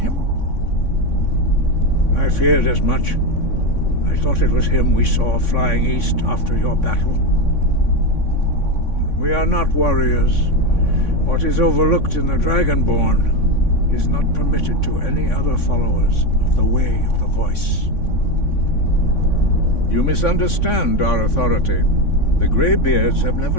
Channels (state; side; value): late; right; 3.6 ms